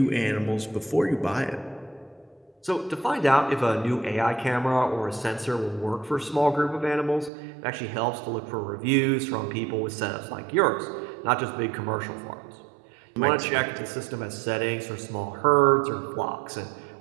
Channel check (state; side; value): drops out; left; at 7.3 s